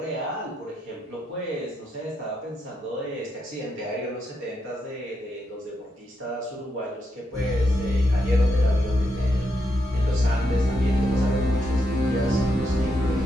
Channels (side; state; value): both; normal; correlation 0.81